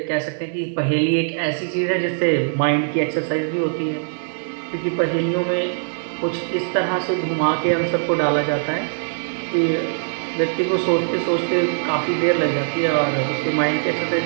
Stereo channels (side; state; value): left; silent; 65 dB below the other